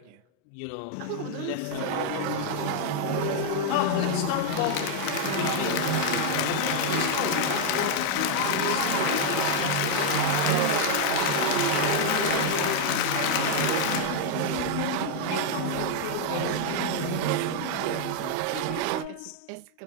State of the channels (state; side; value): different; both; correlation 0.00